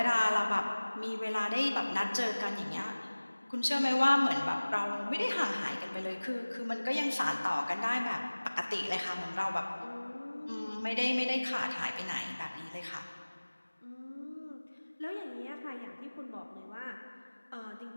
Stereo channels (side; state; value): both; inverted; correlation -1.00